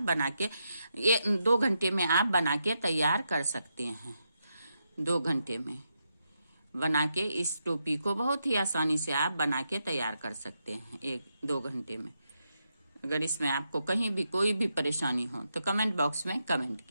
बना के, ये 2 घंटे में आप बना के तैयार कर सकते हैं। 2 घंटे में बना के इस टोपी को बहुत ही आसानी से आप बना के तैयार कर सकते हैं 1-2 घंटे में। अगर इसमें आपको कहीं भी कोई भी परेशानी हो तो कमेंट बॉक्स में कमेंट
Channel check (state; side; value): inverted; both; correlation -0.83